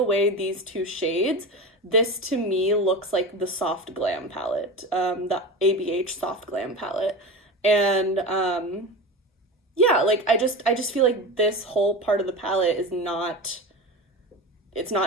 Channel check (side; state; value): both; normal; correlation 0.27